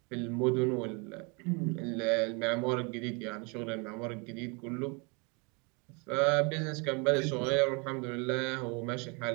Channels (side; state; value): left; quieter; 31.9 dB